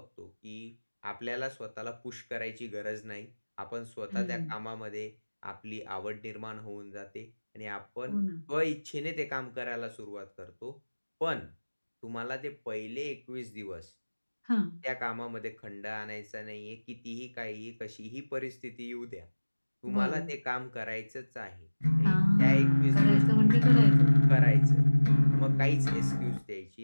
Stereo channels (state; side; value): inverted; both; correlation -1.00